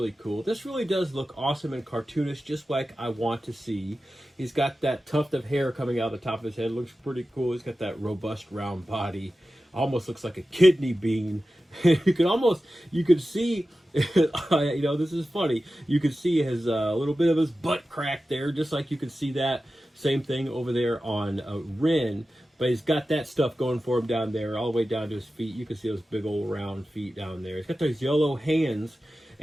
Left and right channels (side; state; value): both; normal; correlation 0.94